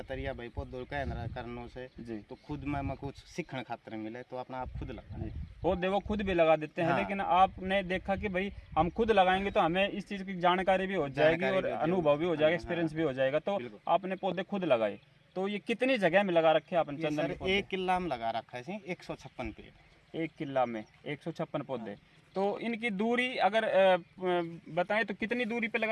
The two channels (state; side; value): identical; both; correlation 1.00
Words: तरीका भाई पौधों कहना करने से जी। तो खुद में कुछ सीखने खातिर मिले तो अपना आप खुद लगा पौधे वो खुद भी लगा देते हैं। हाँ। लेकिन आपने देखा कि भाई हम खुद लगाएंगे तो हमें इस चीज़ की जानकारी भी हो जाएगी और अनुभव भी हो जाएगा, एक्सपीरियंस भी हो जाएगा। तो आपने पौधे खुद लगाए। तो ये कितनी जगह में लगा रखे आपने चंदन के पौधे? 1 किला में लगा रखा है 156 पेड़। 1 किला में 156 पौधे। तो इनकी दूरी अगर बताएं तो कितनी दूरी पे